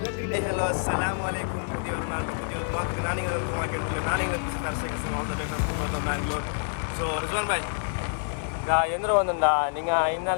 hello അസ്സലാമലൈക്കും Bangalore so Rizwan ಬಾಯ್ ಎಂದ್ರು ಒಂದೊಂದ ನಿಂಗೆ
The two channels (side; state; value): right; silent; 60 dB below the other